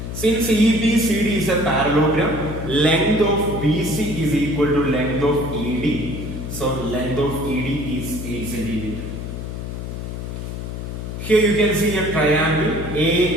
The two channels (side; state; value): left; noise; hum, 7 dB below the sound